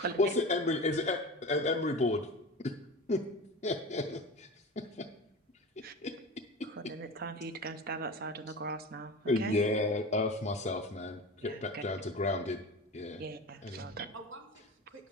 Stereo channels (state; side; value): normal; both; correlation 0.31